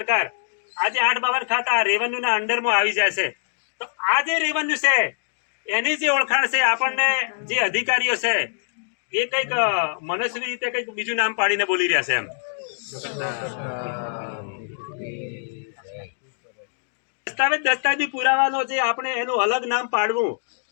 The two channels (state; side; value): silent; right; digital silence